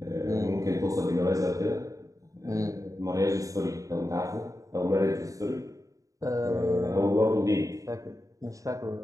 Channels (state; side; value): late; left; 0.16 ms